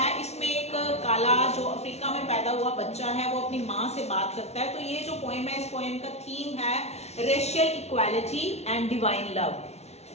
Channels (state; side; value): late; right; 0.31 ms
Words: इसमें एक काला जो अफ्रीका में पैदा हुआ बच्चा है वो अपनी माँ से बात करता है. तो ये जो पोएम है इस पोएम का थीम है racial equality and divine love.